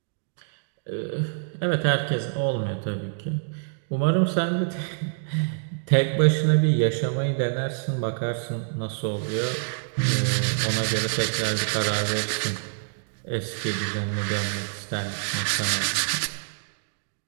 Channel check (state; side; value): silent; left; digital silence